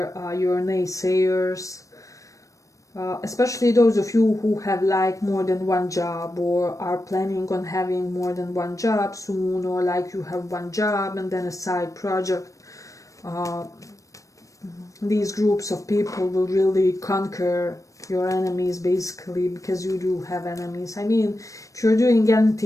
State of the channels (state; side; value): late; right; 0.16 ms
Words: your naysayers, especially those of you who have like more than one job, or are planning on having more than one job soon, or like you have one job and then a side project. These groups of people will really conquer your enemies, basically, because you do have enemies. I mean, if you're doing